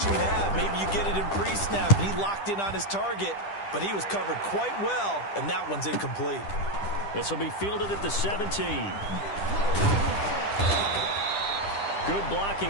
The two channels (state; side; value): late; right; 10 ms